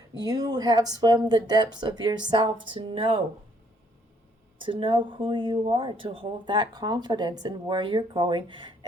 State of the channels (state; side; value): normal; both; correlation 0.66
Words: have swum the depths of yourself to know who you are, to hold that confidence in where you're going